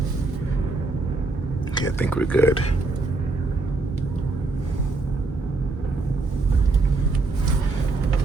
Okay, I think we're good.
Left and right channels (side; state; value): left; quieter; 3.4 dB